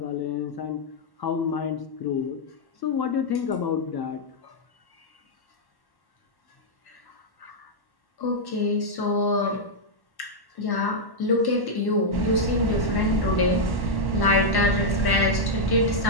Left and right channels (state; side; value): late; right; 1.1 ms